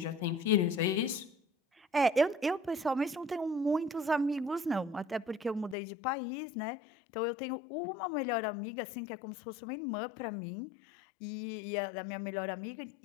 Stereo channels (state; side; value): drops out; right; at 5.8 s